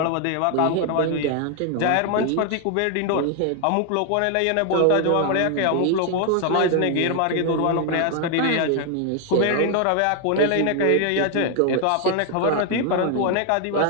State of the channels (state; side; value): different; both; correlation 0.00